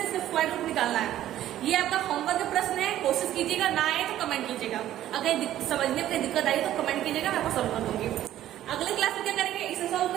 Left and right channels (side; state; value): left; quieter; 12.8 dB